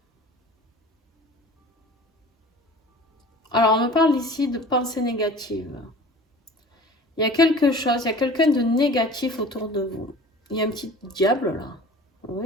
Alors, on me parle ici de pensée négative. Il y a quelque chose, il y a quelqu'un de négatif autour de vous. Il y a un petit diable, là.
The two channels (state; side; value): normal; both; correlation 0.42